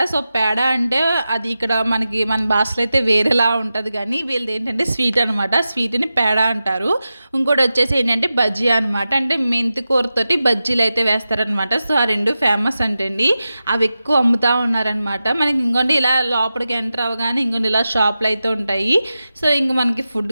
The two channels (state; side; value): inverted; both; correlation -0.92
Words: సో పేడ అంటే అది ఇక్కడ మనకి మన భాషలో అయితే వేరేలా ఉంటుంది, కానీ వీళ్ళది ఏంటంటే స్వీట్ అనమాట. స్వీట్ని పేడ అంటారు. ఇంకోటి వచ్చేసి ఏంటంటే బజ్జీ అనమాట, అంటే మెంతి కూరతోటి బజ్జీలు అయితే వేస్తారనమాట. సో ఆ 2 ఫేమస్ అంటండి, అవి ఎక్కువ అమ్ముతూ ఉన్నారనమాట. మనకి ఇంకోటి ఇలా లోపలికి ఎంటర్ అవ్వగానే ఇంకోటి ఇలా షాప్లు అయితే ఉంటాయి. సో ఇంక మనకి